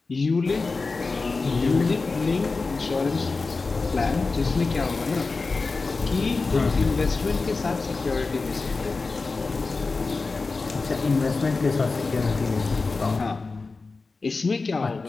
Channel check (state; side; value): quieter; right; 4.0 dB